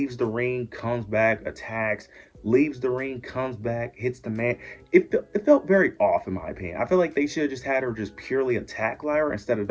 the ring, comes back, attacks, leaves the ring, comes back, hits the man. It felt very off in my opinion. I feel like they should have just had her just purely attack Lyra instead of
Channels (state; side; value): identical; both; correlation 1.00